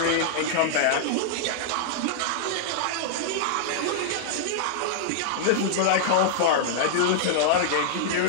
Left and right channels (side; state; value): both; different; correlation -0.01